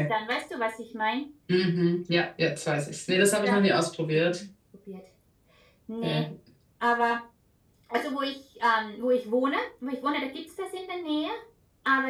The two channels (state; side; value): identical; both; correlation 1.00